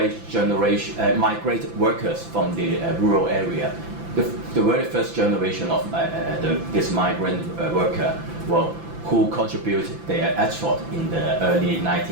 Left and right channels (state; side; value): late; left; 5.9 ms